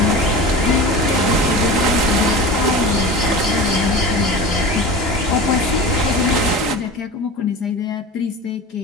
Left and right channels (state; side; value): normal; both; correlation 0.32